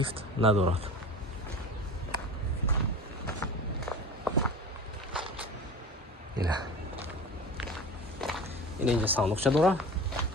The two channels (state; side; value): normal; both; correlation 0.35